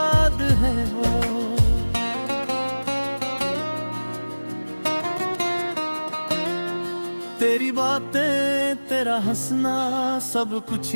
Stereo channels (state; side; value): inverted; both; correlation -1.00